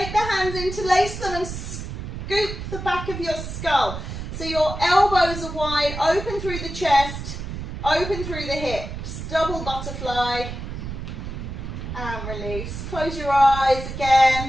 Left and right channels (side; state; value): right; noise; rumble, 7 dB below the sound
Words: the hands, interlace them and scoop the back of your skull. So your elbows are wide, open through the chest, open through the hips. Double butterfly and release. Close your eyes